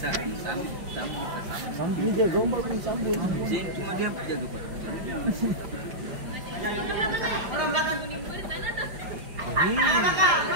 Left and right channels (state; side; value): late; left; 5.0 ms